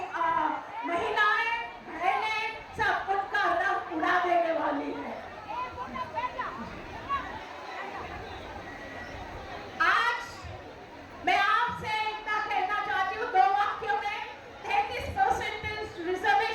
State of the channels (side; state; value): both; identical; correlation 1.00